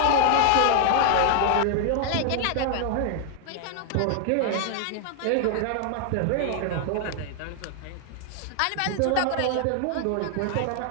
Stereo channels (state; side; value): different; both; correlation 0.00